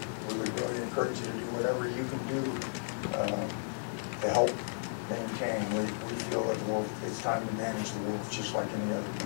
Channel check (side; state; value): right; silent; digital silence